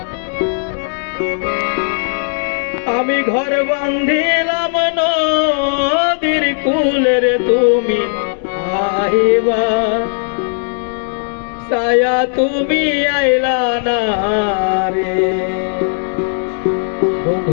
আমি ঘর বান্ধিলাম নদীর কূলের তুমি আইবা ছায়া তুমি আইলা না রে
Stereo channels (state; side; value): silent; right; 63 dB below the other